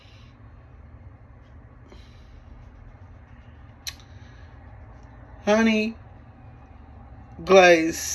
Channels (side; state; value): both; identical; correlation 1.00